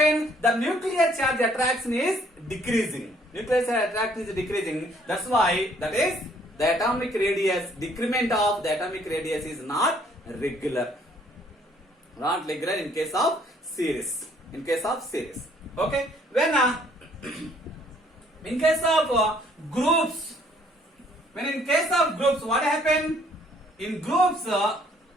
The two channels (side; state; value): both; normal; correlation 0.63